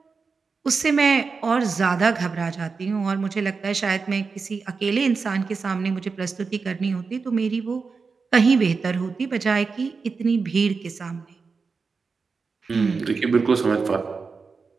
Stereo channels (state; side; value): quieter; left; 4.8 dB